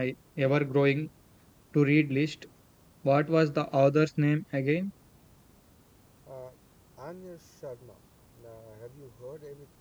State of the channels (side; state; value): both; identical; correlation 1.00